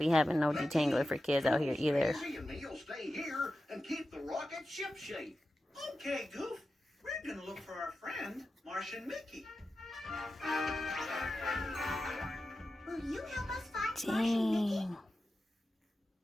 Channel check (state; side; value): normal; both; correlation 0.92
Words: having no detangler for kids out here either. You'll stay here and keep the rocket ship shape. Okay, Goof. We're gonna look for our friend, Martian Mickey. Will you help us find Martian Mickey?